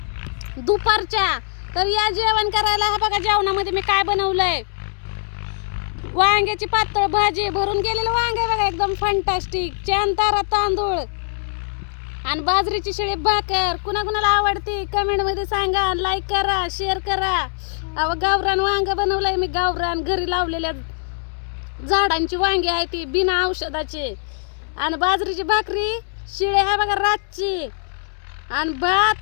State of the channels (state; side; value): silent; right; digital silence